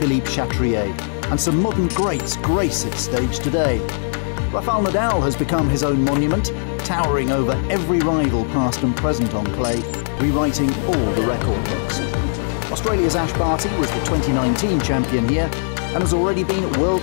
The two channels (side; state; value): right; silent; 58 dB below the other